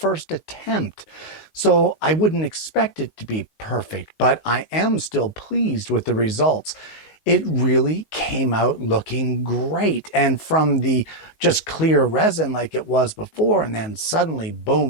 attempt, so I wouldn't expect it to be perfect, but I am still pleased with the results. It really came out looking great. And from the just clear resin like it was before, and then suddenly,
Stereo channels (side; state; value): right; late; 19 ms